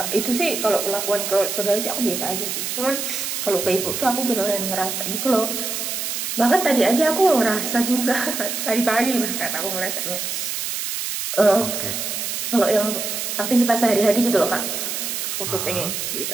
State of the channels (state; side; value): noise; right; hiss, 3 dB below the sound